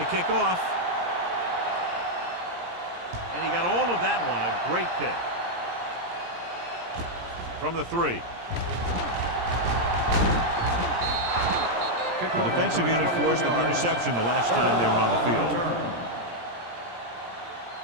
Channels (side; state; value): left; late; 17 ms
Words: kick off. And he got all of that one. A great kick. From the 3. The defensive unit forced an interception the last time they were on the field.